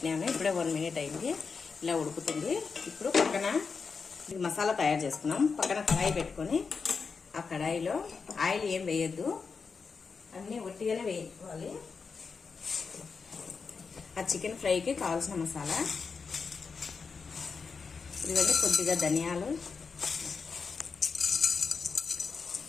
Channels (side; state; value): right; quieter; 5.2 dB